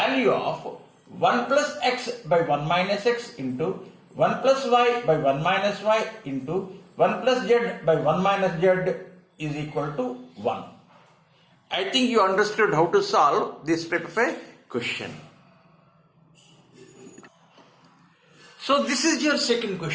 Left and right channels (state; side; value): identical; both; correlation 1.00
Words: of 1 plus x by 1 minus x into 1 plus y by 1 minus y into 1 plus z by 1 minus z is equal to 1. I think you understood how to solve this type of a question. So this is your second